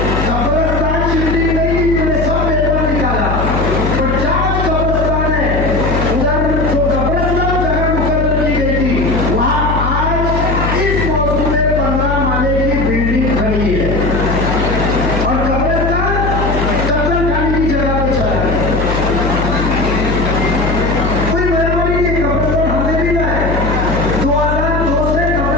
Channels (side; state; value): left; noise; hum, 1 dB below the sound